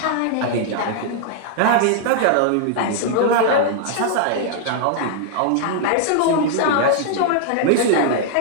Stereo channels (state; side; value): different; both; correlation -0.01